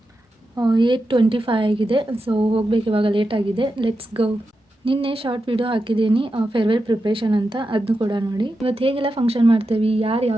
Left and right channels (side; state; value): both; normal; correlation 0.89